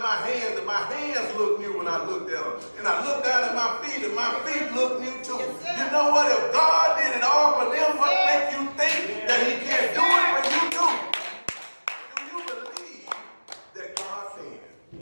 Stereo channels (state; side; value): inverted; both; correlation -1.00